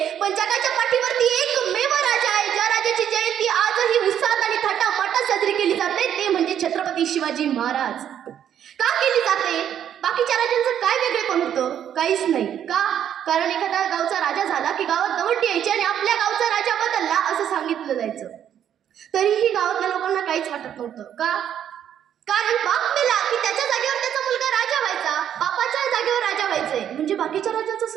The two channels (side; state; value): left; quieter; 9.7 dB